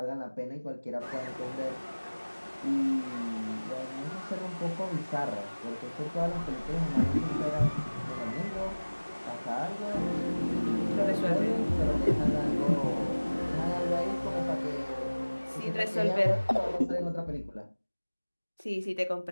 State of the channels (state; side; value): inverted; both; correlation -1.00